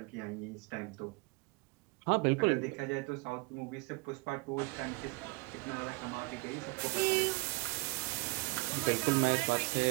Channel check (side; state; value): left; quieter; 28.5 dB